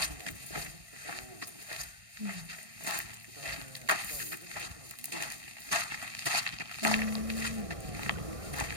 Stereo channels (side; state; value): left; late; 1.6 ms